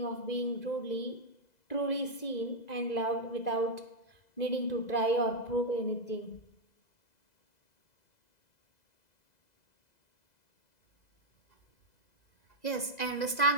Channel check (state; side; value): late; right; 2.0 ms